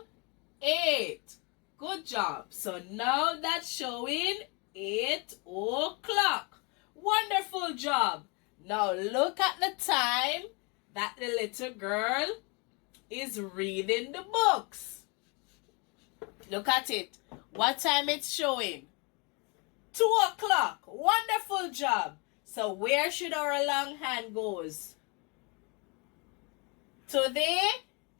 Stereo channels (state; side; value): quieter; right; 31.3 dB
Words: 8. Good job. So now that's showing 8 o'clock. Wonderful job. Now look at the time that the little girl is reading the books. Look at it. What time it's showing? 2 o'clock. Wonderful job. So where should our long hand goes? To the